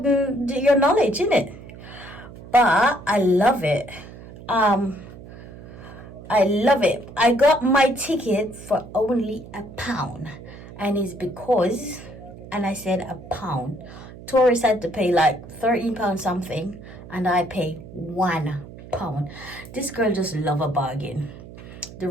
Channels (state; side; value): noise; right; hum, 16 dB below the sound